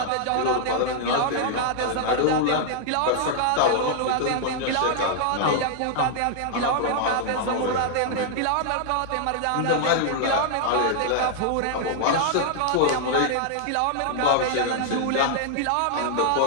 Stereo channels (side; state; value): both; different; correlation -0.01